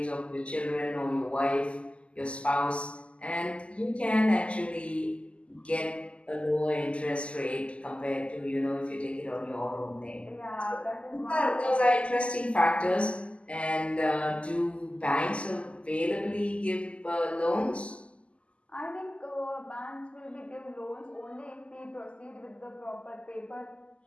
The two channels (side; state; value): right; late; 0.056 ms